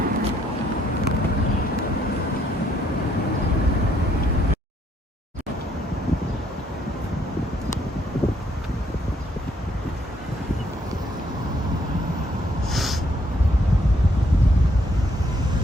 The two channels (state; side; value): normal; both; correlation 0.70